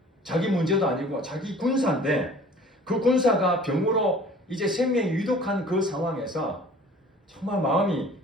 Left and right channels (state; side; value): normal; both; correlation 0.48